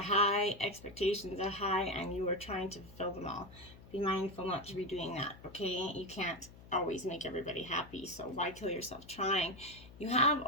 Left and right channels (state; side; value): noise; left; hum, 19 dB below the sound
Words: high, expectations are high, and you are trying to fulfill them all. Be mindful not to be doing that, okay? You can't always make everybody happy, so why kill yourself trying? You have